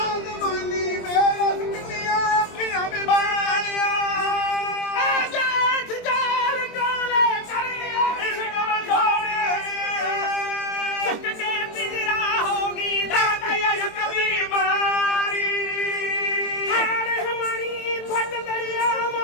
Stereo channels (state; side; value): late; right; 22 ms